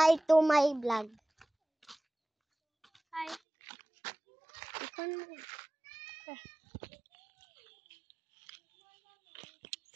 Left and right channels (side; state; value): left; drops out; at 3.4 s